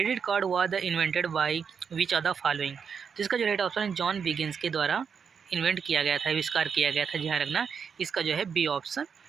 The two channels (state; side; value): quieter; left; 6.6 dB